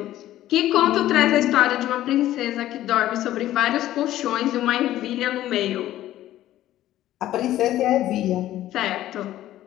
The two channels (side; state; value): right; quieter; 13.8 dB